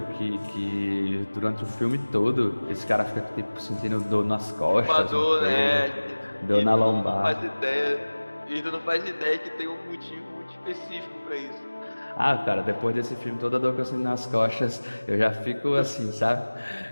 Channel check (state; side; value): inverted; both; correlation -1.00